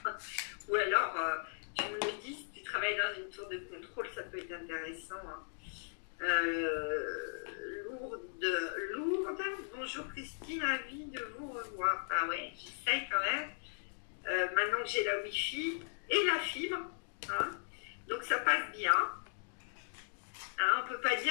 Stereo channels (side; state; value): right; silent; digital silence